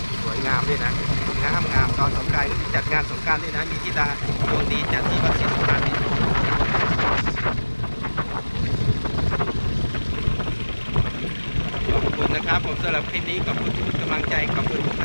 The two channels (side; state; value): both; inverted; correlation -1.00